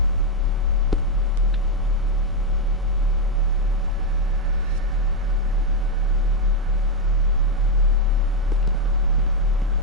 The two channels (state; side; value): normal; both; correlation 0.02